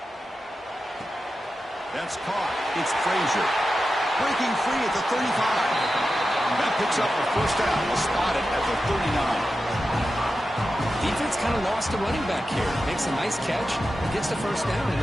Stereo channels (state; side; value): normal; both; correlation 0.91